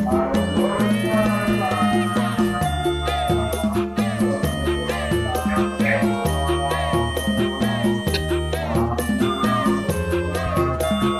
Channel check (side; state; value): both; identical; correlation 1.00